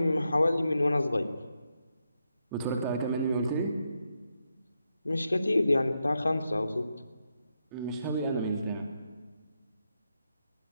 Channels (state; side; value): inverted; both; correlation -0.84